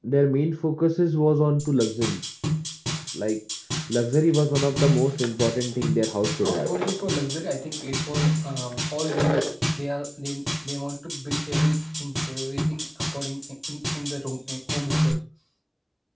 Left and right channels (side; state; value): both; identical; correlation 1.00